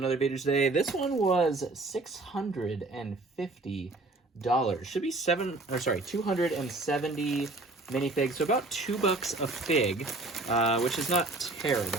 video today. This one was $650. Should be 270 minifigs, so about $2 a fig, which is not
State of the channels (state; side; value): quieter; left; 3.0 dB